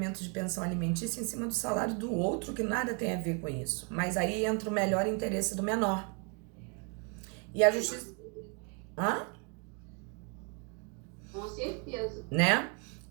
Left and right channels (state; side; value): quieter; left; 35.1 dB